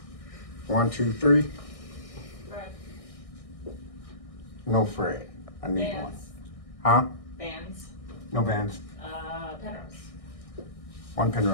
1, 2, 3. Thread. No Fred. I need one. Bands. Huh? Bands. No bands. Penrose. 1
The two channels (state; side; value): late; right; 1.6 ms